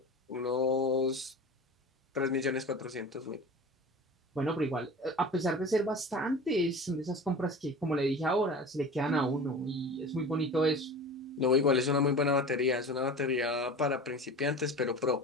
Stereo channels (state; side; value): normal; both; correlation 0.35